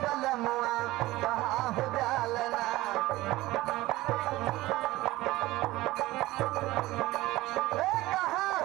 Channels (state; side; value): quieter; left; 18.1 dB